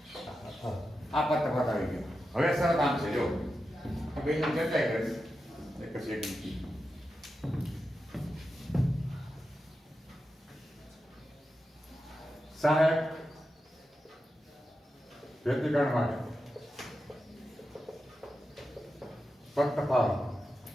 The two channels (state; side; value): normal; both; correlation 0.90